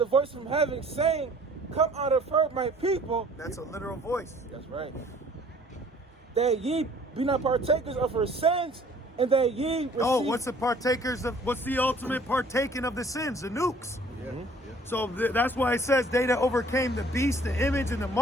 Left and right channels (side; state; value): both; normal; correlation 0.54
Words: voice from heaven saying, come out of her, my people. That's a literal voice. That's right. That ye be not partakers of her sins, and that ye receive... Oh, what's the ultimate partaking of the sins? The nukes. Yeah. So that's why it says they that overcame the beast, the image, and the